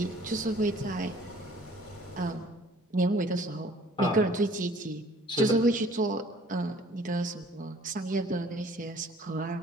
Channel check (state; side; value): normal; both; correlation 0.55